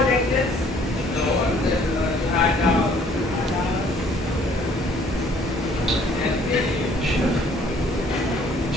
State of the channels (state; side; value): normal; both; correlation 0.59